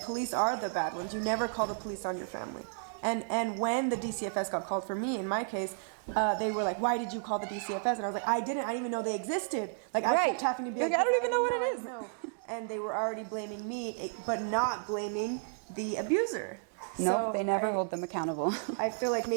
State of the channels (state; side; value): silent; left; digital silence